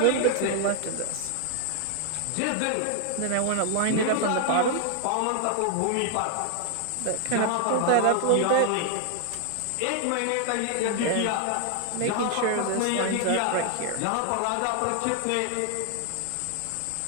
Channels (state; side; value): different; both; correlation 0.00